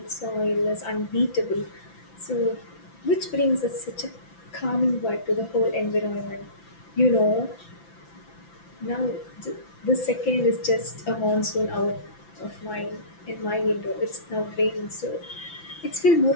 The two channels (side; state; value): right; late; 5.9 ms